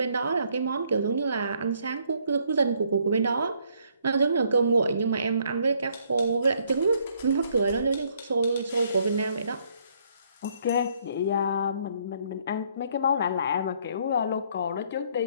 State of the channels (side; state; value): both; inverted; correlation -0.67